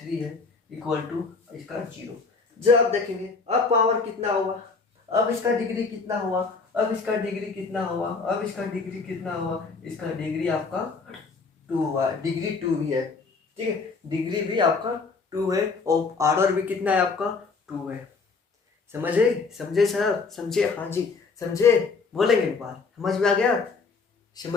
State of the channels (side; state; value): right; quieter; 4.5 dB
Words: है इक्वल टू इसका 0। जब आप देखेंगे अब पावर कितना हुआ, अब इसका डिग्री कितना हुआ, इसका डिग्री आपका 2 हुआ, डिग्री 2 भी है। ठीक है, डिग्री भी आपका 2 है और ऑर्डर भी कितना है आपका 2 है। समझे सर, समझे? हाँ जी समझे, बोलेंगे एक बार, समझ में